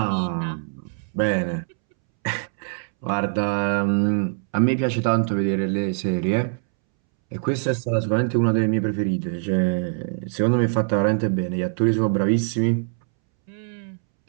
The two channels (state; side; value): silent; left; 63 dB below the other